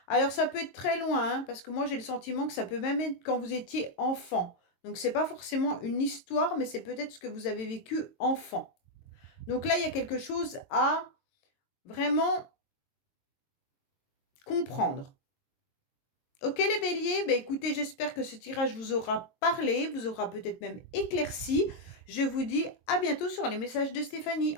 Alors ça peut être très loin, hein, parce que moi j'ai le sentiment que ça peut même être quand vous étiez enfant. Donc c'est pas forcément une histoire, mais c'est peut-être ce que vous avez vécu enfant. Donc là, il y a quelque chose à vraiment comprendre. Ok les béliers, bah écoutez, j'espère que ce tirage vous aura parlé, vous aura peut-être même éclairci. Je vous dis à bientôt sur les messages de Stéphanie.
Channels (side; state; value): right; late; 22 ms